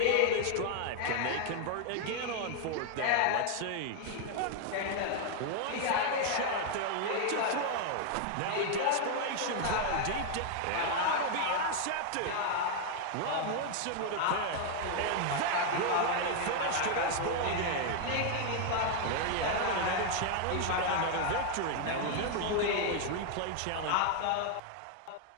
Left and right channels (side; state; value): both; different; correlation 0.00